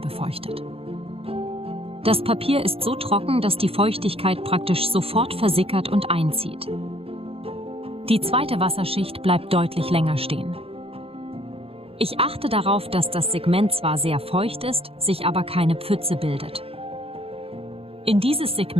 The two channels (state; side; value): late; left; 0.28 ms